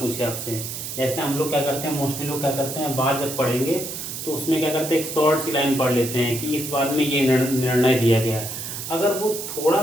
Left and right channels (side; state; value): right; noise; hiss, 7 dB below the sound